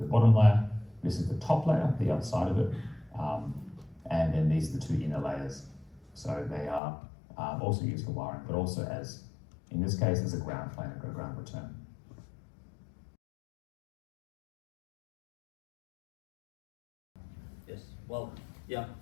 layer. This is the top layer, the outside of it, and then these are the 2 inner layers. So they are also used for wiring, but also as, in this case, as a ground plane or a ground return. Yes, well, yeah,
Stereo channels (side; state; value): right; drops out; at 6.8 s